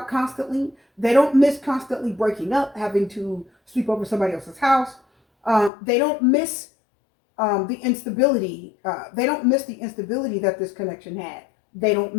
constantly. They don't miss constantly breaking up, having to sleep over somebody else's house. They don't miss the instability. They don't miss the instability that this connection had. They don't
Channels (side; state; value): right; drops out; at 5.7 s